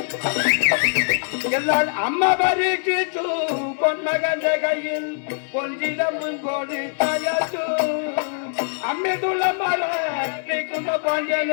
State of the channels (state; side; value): silent; right; 63 dB below the other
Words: എന്നാൽ അമ്മ പരീക്ഷിച്ചു പൊന്മകന്റെ കയ്യിൽ പൊഞ്ചിടമ്പും കോടി തകർത്തു അമ്മയുള്ള മറിക്കുന്ന